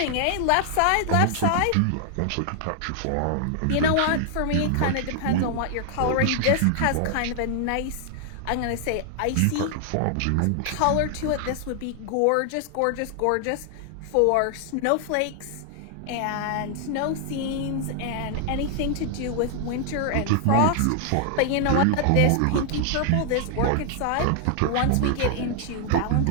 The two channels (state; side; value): different; both; correlation 0.00